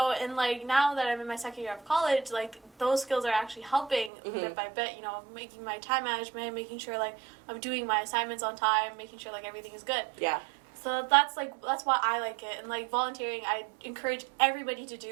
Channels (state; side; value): drops out; left; at 4.1 s